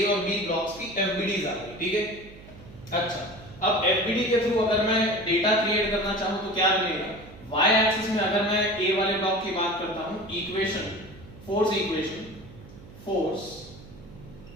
और बी ब्लॉक्स की एफबीडीज आ गई। ठीक है, अच्छा, अब एफबीडी के थ्रू अगर मैं डेटा क्रिएट करना चाहूं तो क्या बनेगा, वाई एक्सिस में अगर मैं ए वाले ब्लॉक की बात करता हूं, equation, force equation, force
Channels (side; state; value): right; noise; hum, 18 dB below the sound